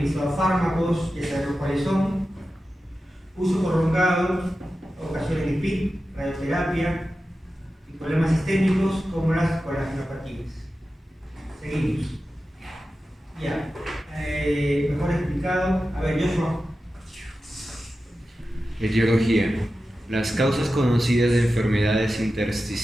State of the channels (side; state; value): both; normal; correlation 0.93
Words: fármacos, ya sabemos cuáles son. Uso prolongado, ocasiones de PIC, radioterapia y problemas sistémicos como las colagenopatías. Seguimos. Ya. Mejor explicado. A ver, Joshua. Etiología. Las causas conocidas de enfermedades